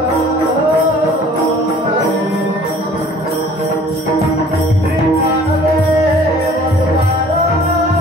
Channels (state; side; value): normal; both; correlation 0.51